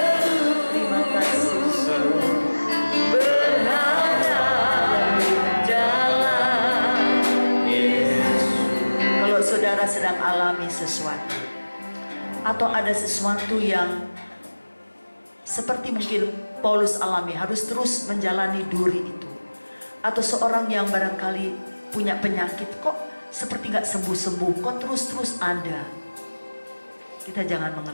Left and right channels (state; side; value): inverted; both; correlation -1.00